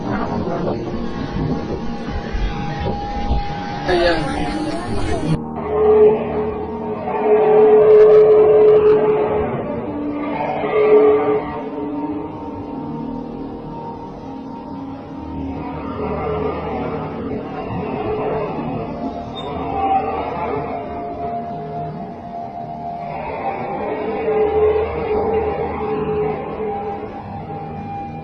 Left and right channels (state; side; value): identical; both; correlation 1.00